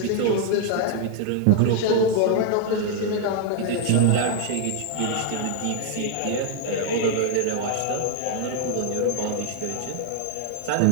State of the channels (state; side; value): different; both; correlation 0.00